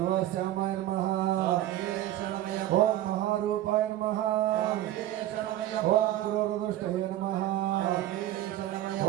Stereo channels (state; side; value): quieter; left; 13.7 dB